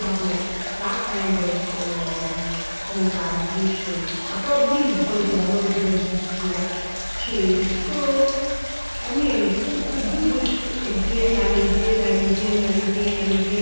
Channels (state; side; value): inverted; both; correlation -1.00